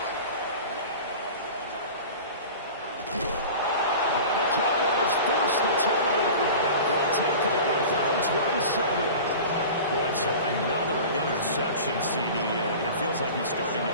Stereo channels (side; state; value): both; inverted; correlation -0.36